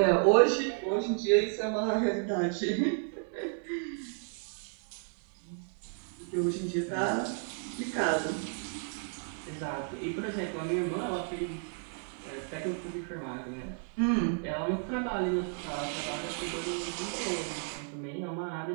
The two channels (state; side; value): silent; left; 56 dB below the other